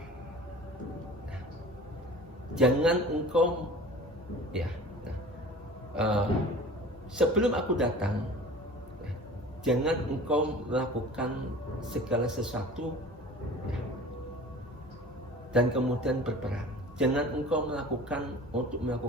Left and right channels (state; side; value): normal; both; correlation 0.42